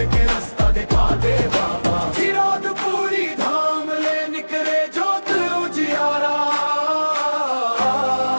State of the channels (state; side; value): inverted; both; correlation -1.00